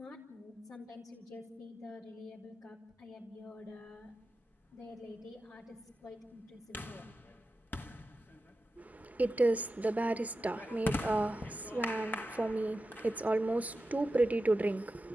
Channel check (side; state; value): both; normal; correlation 0.92